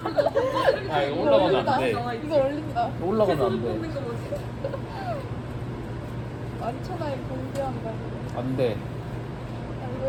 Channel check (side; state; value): both; identical; correlation 1.00